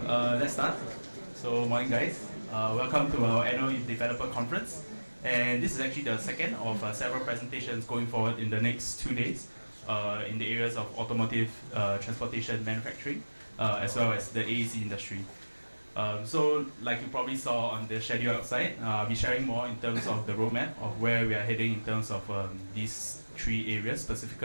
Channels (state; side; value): inverted; both; correlation -1.00